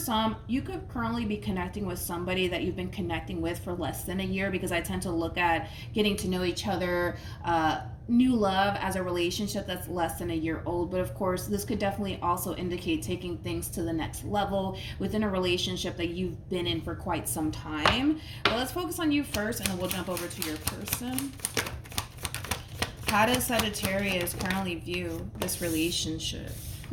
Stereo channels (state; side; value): identical; both; correlation 1.00